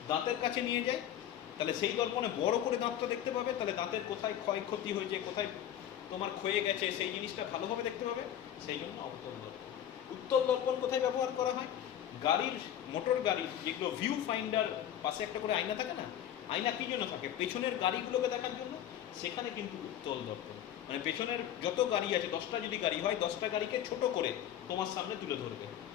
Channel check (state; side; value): quieter; right; 10.7 dB